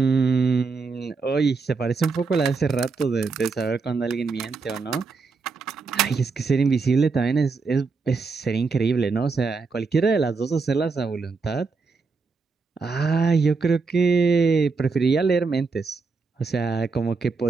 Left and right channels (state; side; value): quieter; left; 4.5 dB